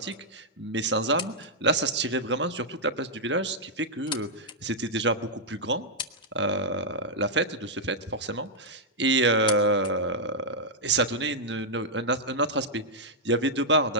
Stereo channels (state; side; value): normal; both; correlation -0.07